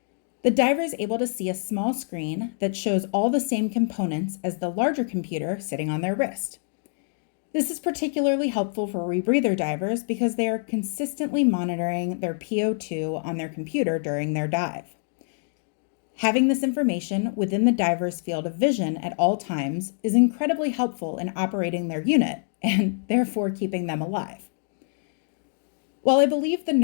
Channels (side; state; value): right; silent; digital silence